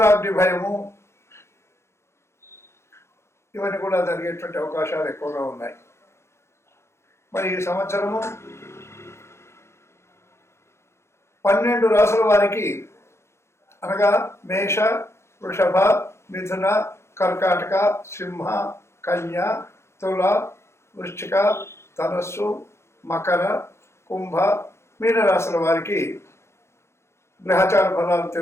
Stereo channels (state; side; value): late; right; 0.13 ms